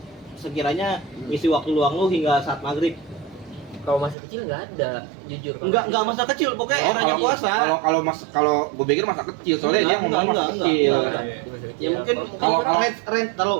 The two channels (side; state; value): left; drops out; at 4.2 s